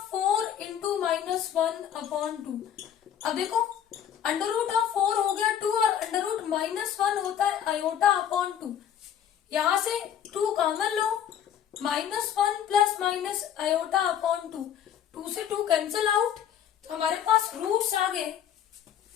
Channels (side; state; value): right; quieter; 9.4 dB